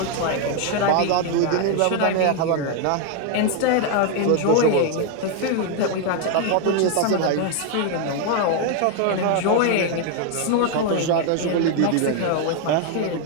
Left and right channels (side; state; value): both; different; correlation 0.01